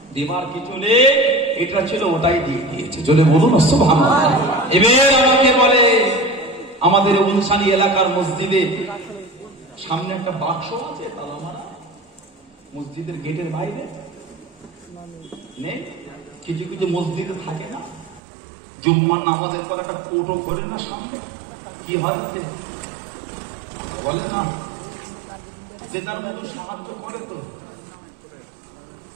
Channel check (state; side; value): drops out; left; at 18.2 s